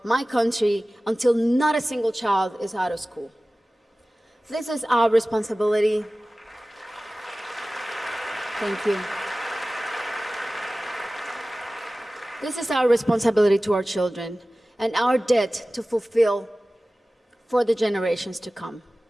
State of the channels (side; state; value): both; normal; correlation 0.97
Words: my country until not a single child is out of school. This is our responsibility. Thank you. This is our responsibility to our children and our debt to fulfill for the generations to come.